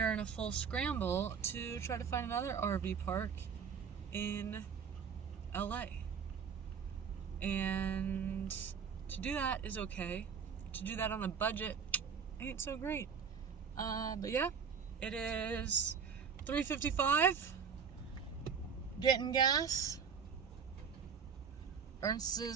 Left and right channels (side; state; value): left; quieter; 6.6 dB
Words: in a full scramble to try to find another RV park in LA. And to do that is okay. To do that on a budget ain't so great. But yeah, it is 3:55. Getting gas. Ernst